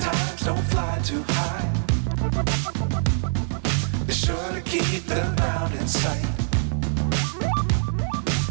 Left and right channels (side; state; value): left; silent; digital silence